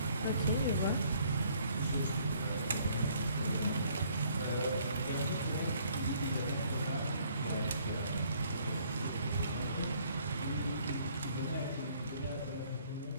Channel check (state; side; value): inverted; both; correlation -0.63